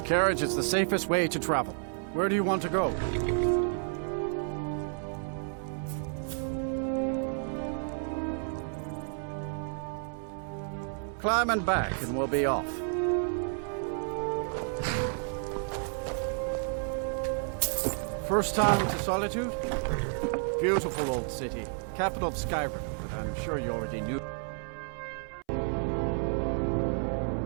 carriage is the safest way to travel. Where do you want to go? Climb and back, and we'll be off. First time to Solitude? Beautiful old city. Capital of Skyrim, but I'm sure you already knew.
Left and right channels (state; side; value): silent; left; 57 dB below the other